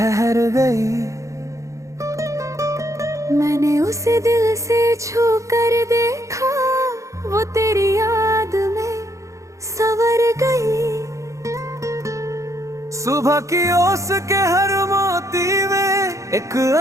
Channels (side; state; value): left; late; 0.15 ms